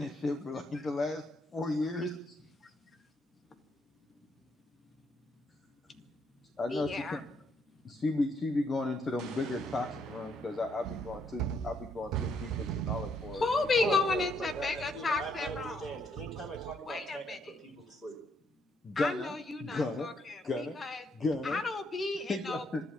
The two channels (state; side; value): normal; both; correlation 0.73